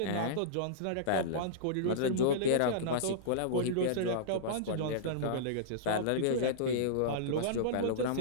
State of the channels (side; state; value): both; different; correlation -0.03